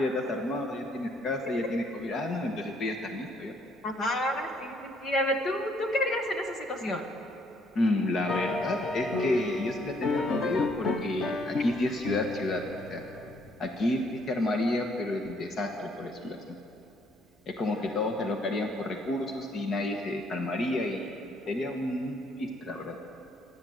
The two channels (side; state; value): both; normal; correlation 0.67